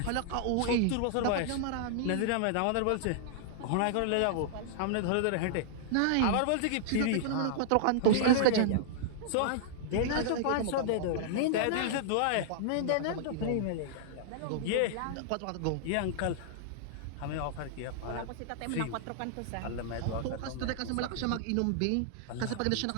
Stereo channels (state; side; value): different; both; correlation -0.01